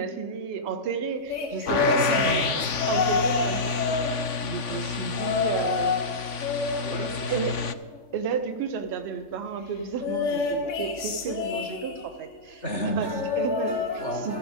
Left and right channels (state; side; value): late; right; 3.5 ms